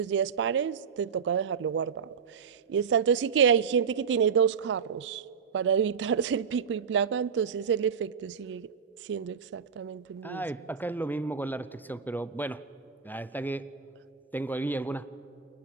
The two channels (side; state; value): left; quieter; 6.5 dB